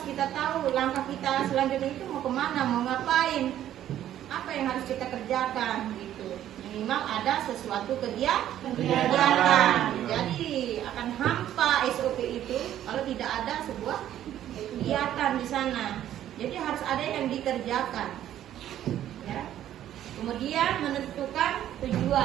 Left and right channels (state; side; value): quieter; left; 11.7 dB